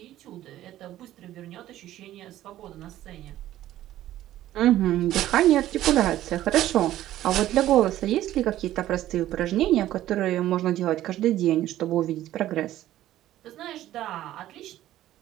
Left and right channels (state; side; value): quieter; left; 13.7 dB